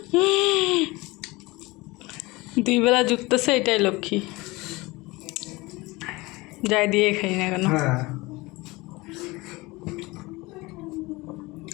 দুই বেলা জুটতেছে, এটাই লক্ষ্মী। যাই দিয়ে খাই না কেন। হ্যাঁ,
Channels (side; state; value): right; quieter; 22.5 dB